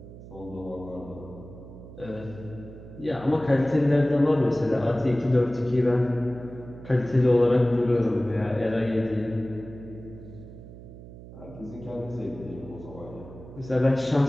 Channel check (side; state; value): right; noise; hum, 16 dB below the sound